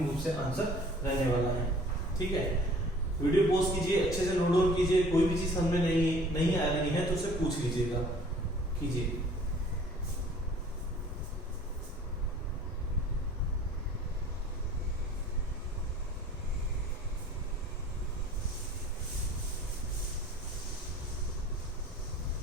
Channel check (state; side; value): normal; both; correlation 0.51